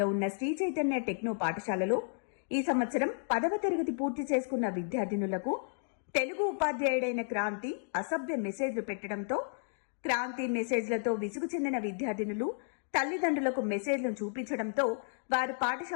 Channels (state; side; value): silent; right; digital silence